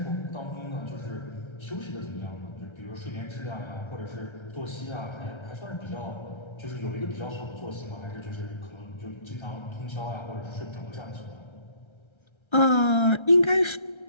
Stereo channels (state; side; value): late; right; 1.3 ms